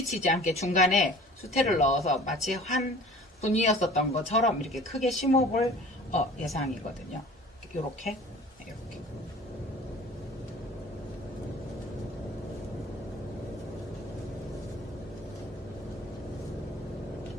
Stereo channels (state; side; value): normal; both; correlation 0.46